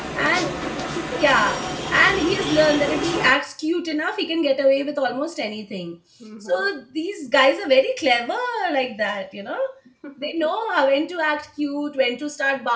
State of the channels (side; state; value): both; identical; correlation 1.00